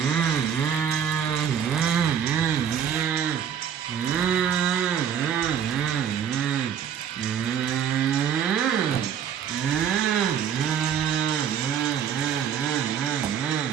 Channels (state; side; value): quieter; left; 8.5 dB